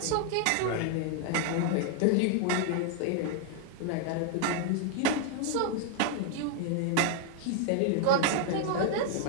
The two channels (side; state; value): both; different; correlation 0.00